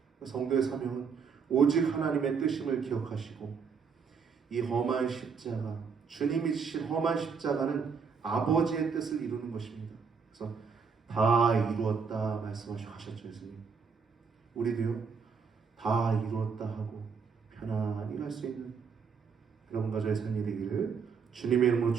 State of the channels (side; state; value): left; quieter; 5.8 dB